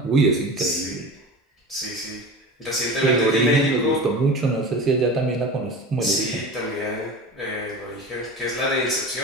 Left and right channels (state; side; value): normal; both; correlation 0.32